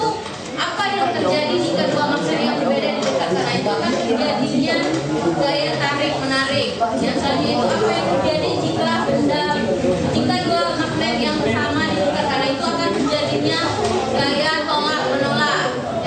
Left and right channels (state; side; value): identical; both; correlation 1.00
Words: apa yang terjadi jika dua magnet yang berbeda didekatkan? Nah itu akan terjadinya gaya tarik menarik. Yang selanjutnya itu apa yang terjadi jika dua magnet yang sama didekatkan? Nah itu akan terjadinya gaya tolak menolak.